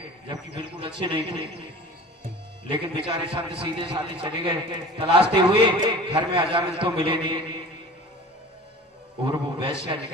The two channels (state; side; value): normal; both; correlation 0.40